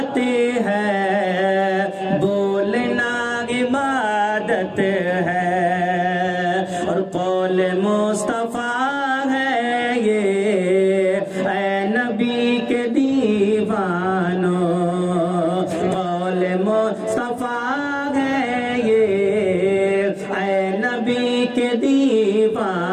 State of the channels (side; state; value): both; identical; correlation 1.00